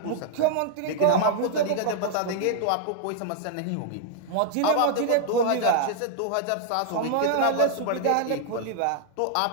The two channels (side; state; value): both; different; correlation 0.00